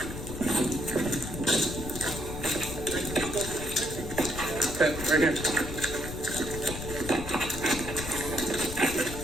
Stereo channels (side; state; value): left; noise; rumble, 8 dB below the sound